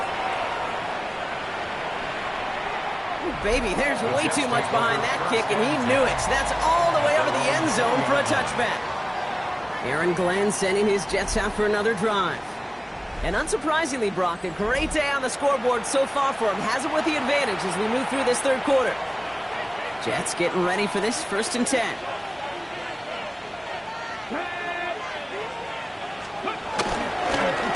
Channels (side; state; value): both; identical; correlation 1.00